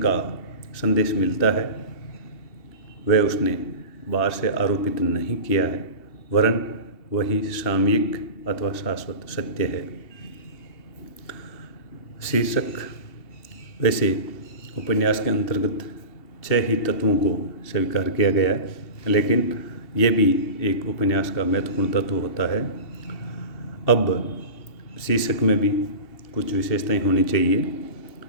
संदेश मिलता है वह उसने बाहर से आरोपित नहीं किया है, वरन वही सामयिक अथवा शाश्वत सत्य है। शीर्षक, वैसे उपन्यास के अंतर्गत 6 ही तत्वों को स्वीकार किया गया है, लेकिन यह भी एक उपन्यास का महत्वपूर्ण तत्व होता है। अब शीर्षक में भी कुछ विशेषताएं होनी चाहिए।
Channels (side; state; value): right; late; 2.7 ms